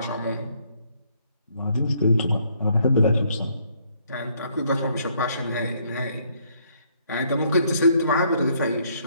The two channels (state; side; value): inverted; both; correlation -0.68